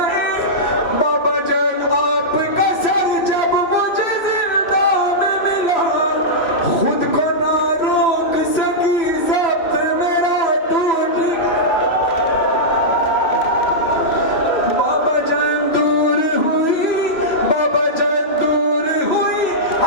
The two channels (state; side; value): late; right; 3.0 ms